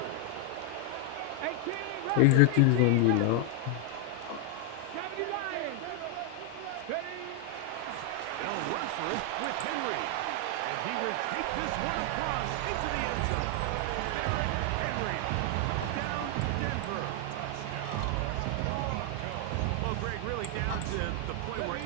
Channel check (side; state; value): both; different; correlation 0.00